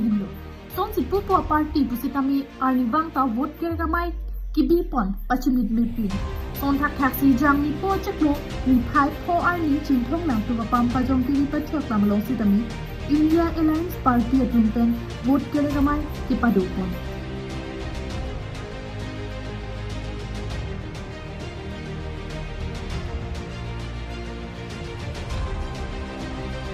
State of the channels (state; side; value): identical; both; correlation 1.00